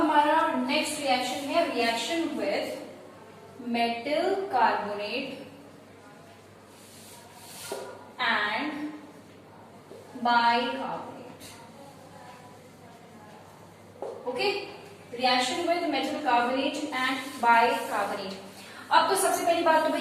नेक्स्ट रिएक्शन है reaction with metal carbonate and bicarbonate. Okay, reaction with metal carbonate and bicarbonate. अब तो सबसे पहली बात तो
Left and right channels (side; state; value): both; identical; correlation 1.00